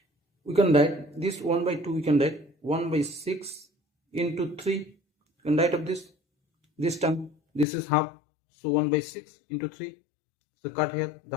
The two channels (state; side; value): drops out; right; at 7.7 s